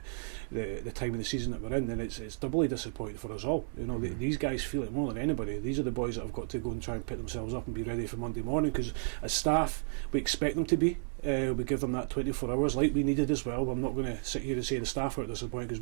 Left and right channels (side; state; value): left; silent; 56 dB below the other